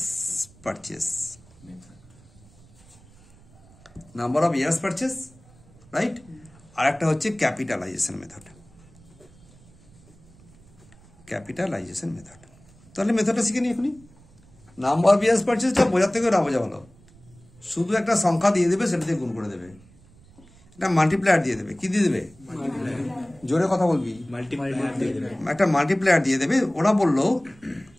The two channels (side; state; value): right; noise; rumble, 26 dB below the sound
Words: purchase, number of years purchase, right. আর একটা হচ্ছে ক্যাপিটালাইজেশন মেথড, ক্যাপিটালাইজেশন মেথড। তাহলে মেথডটা শিখে নি এখনই। নাম্বার অফ ইয়ার্স পারচেসটা বোঝার থেকে না বোঝা ভালো। শুধু একটা সংখ্যা দিয়ে দেবে, সেটা দিয়ে গুণ করে দেবে, একটা মাল্টিপ্লায়ার দিয়ে দেবে। কি দিয়ে দেবে, জোরে কথা বলবি, একটা মাল্টিপ্লায়ার দিয়ে দেবে।